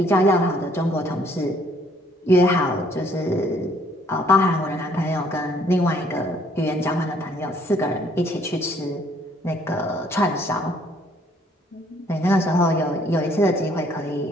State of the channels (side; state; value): both; normal; correlation 0.63